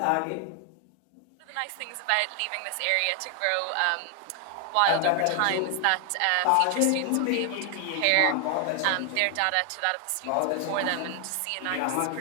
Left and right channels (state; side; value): different; both; correlation 0.00